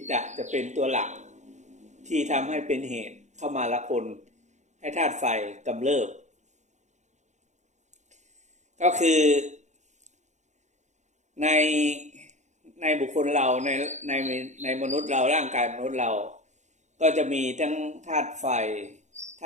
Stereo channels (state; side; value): late; left; 0.34 ms